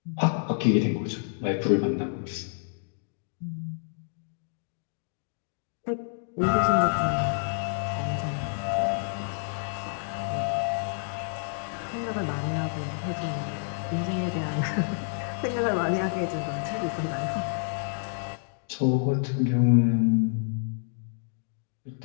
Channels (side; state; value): right; silent; digital silence